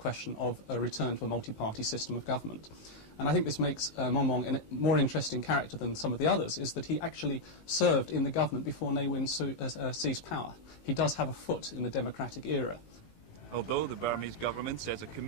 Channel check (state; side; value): late; right; 18 ms